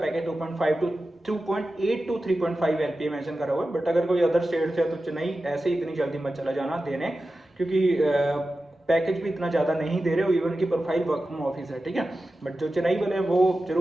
2.5 to 2.8 to 3.5 LPA mention करा हुआ है, बट अगर कोई अदर स्टेट से है तो चेन्नई ऐसे इतनी जल्दी मत चला जाना देने, क्योंकि पैकेज भी इतना ज़्यादा नहीं दे रहे हो, इवन की प्रोफाइल वर्क फ्रॉम ऑफिस है, ठीक है। बट जो चेन्नई वाले हैं वो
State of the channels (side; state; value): both; normal; correlation 0.93